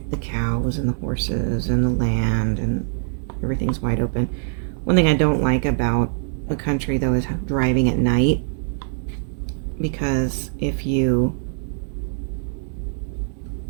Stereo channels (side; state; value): left; silent; 62 dB below the other